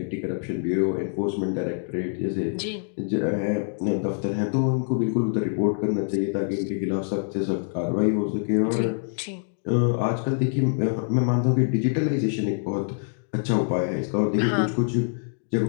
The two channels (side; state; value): right; silent; digital silence